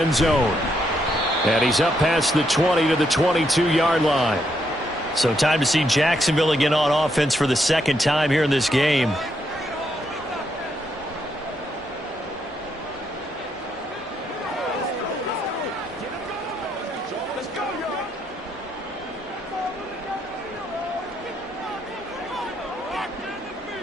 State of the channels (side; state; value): both; normal; correlation 0.77